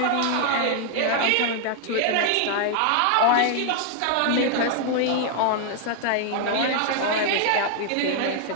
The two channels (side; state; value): both; different; correlation 0.00